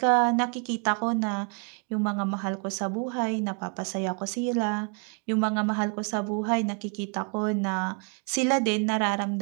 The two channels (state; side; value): quieter; left; 38.5 dB